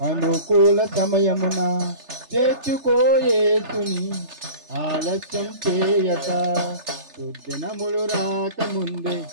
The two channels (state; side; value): late; left; 3.3 ms